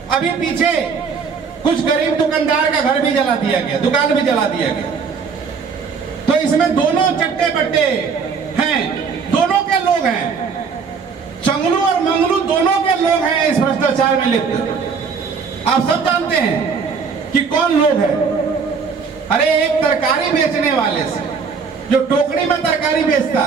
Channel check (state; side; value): quieter; left; 5.6 dB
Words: अभी पीछे कुछ गरीब दुकानदार का घर भी जला दिया गया, दुकान भी जला दिया गया। तो इसमें दोनों चट्टे बट्टे हैं, दोनों के लोग हैं, चंगलू और मंगलू दोनों के लोग हैं इस भ्रष्टाचार में लिप्त। आप सब जानते हैं कि कौन लोग हैं। अरे एक तरकारी बेचने वाले से, जो टोकरी में तरकारी बेचता